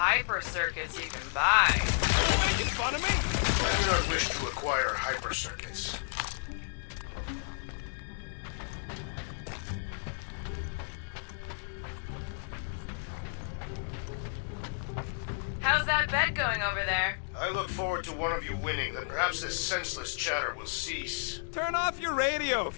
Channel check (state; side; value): silent; right; digital silence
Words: circuits you can buy. You making fun of me? I do not wish to acquire hyper circuits. How's that bet going over there? I look forward to one of you winning, then perhaps this senseless chatter will cease. Turn off your radio